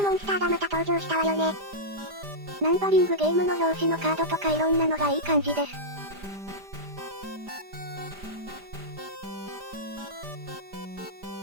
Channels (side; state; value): left; late; 5.0 ms